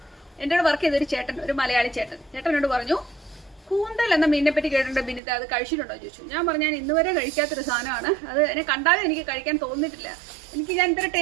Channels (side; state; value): left; drops out; at 5.2 s